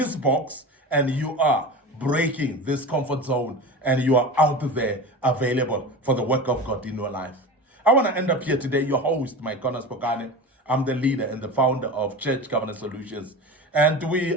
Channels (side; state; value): both; normal; correlation 0.30